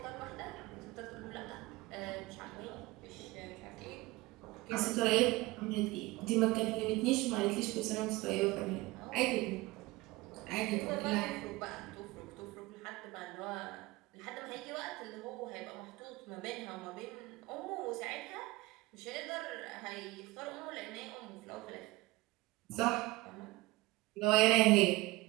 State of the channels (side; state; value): left; quieter; 20.6 dB